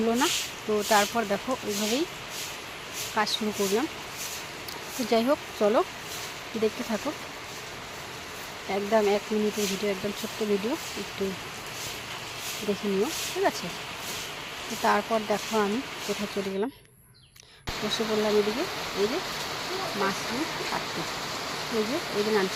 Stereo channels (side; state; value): both; identical; correlation 1.00